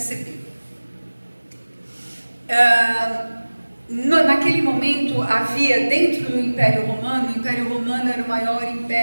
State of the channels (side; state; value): both; inverted; correlation -1.00